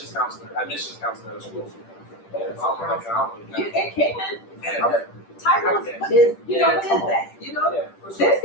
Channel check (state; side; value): late; right; 10 ms